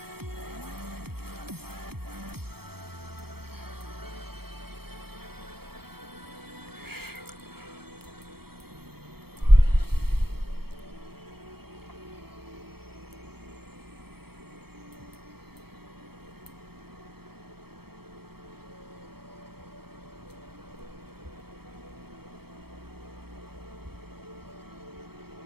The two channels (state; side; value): late; left; 0.96 ms